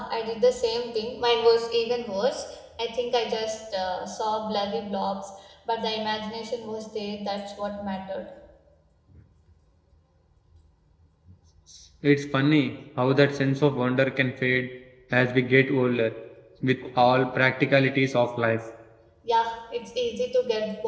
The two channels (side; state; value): both; identical; correlation 1.00